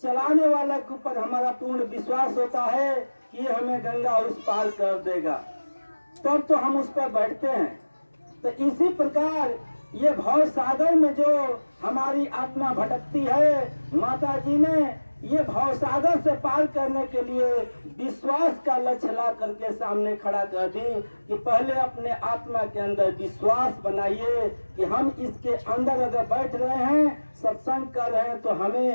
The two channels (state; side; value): inverted; both; correlation -1.00